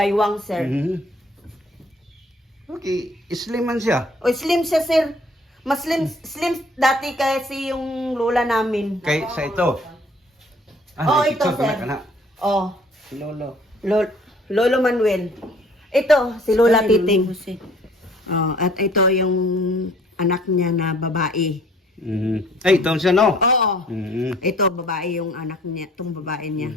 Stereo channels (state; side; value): normal; both; correlation 0.57